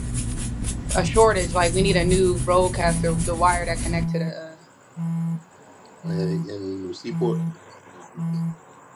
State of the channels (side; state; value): both; identical; correlation 1.00